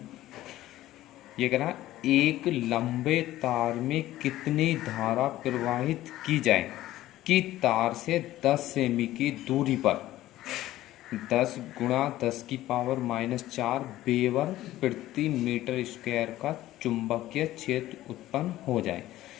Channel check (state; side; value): quieter; right; 15.0 dB